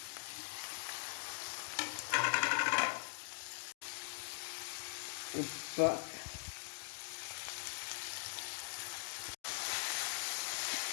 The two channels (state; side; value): silent; right; digital silence